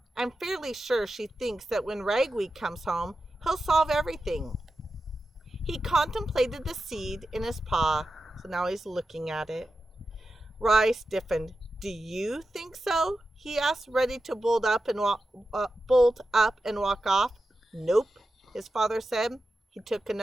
I'm fairly sure she thinks that when Ragweed comes home, he'll solve everything. He contemplated the seed in his paw, so now he's looking at it. Rai stiffened. Do you think so? He asked, ready to bolt up and walk off. Nope, his father said. He took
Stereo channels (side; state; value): both; normal; correlation 0.91